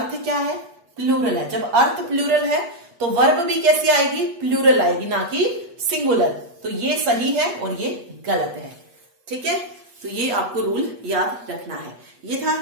क्या है, प्लूरल है। जब अर्थ प्लूरल है तो वर्ब भी कैसी आएगी, प्लूरल आएगी, ना कि सिंगुलर। तो ये सही है और ये गलत है, ठीक है। तो ये आपको रूल याद रखना है। ये था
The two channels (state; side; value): late; left; 8.3 ms